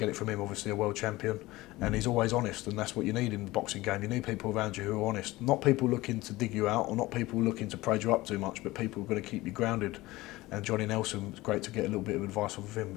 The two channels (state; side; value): quieter; right; 19.1 dB